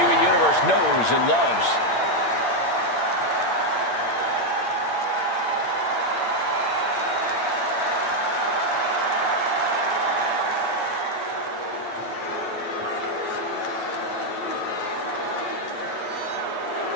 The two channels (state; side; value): late; right; 8.8 ms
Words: Universe knows and loves.